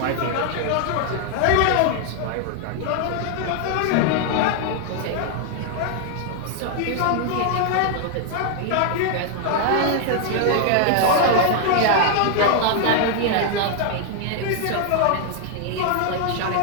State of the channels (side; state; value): both; different; correlation 0.00